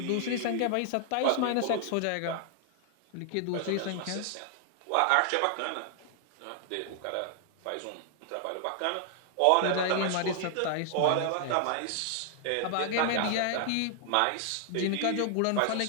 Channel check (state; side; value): different; both; correlation -0.01